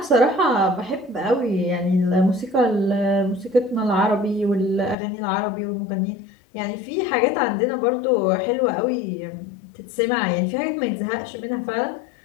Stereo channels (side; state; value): right; drops out; at 5.0 s